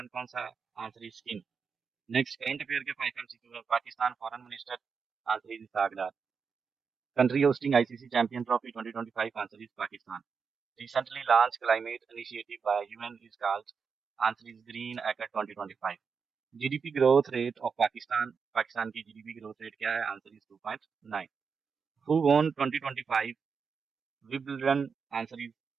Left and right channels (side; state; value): left; quieter; 5.8 dB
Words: कौन सा है? Answer is skin. Next current affair के 5 MCQ है। Pakistan foreign minister, answer is Isaac Dar. Country hosting ICC champion trophy 2025, answer is Pakistan. Recently launched climate initiative by UN is called, answer is Green Accord 2025. GDP growth rate of Pakistan की GDP growth rate क्या है? Answer is 2.9. Who won 2025 Wimbledon? Answer is